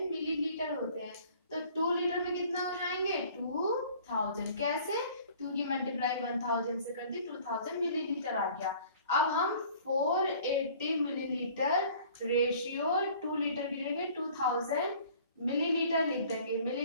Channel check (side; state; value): both; inverted; correlation -0.51